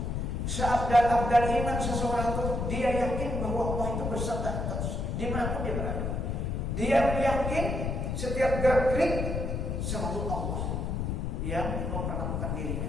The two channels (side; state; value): left; noise; rumble, 1 dB below the sound